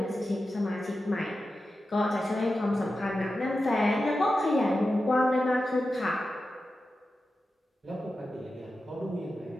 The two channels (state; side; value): normal; both; correlation 0.92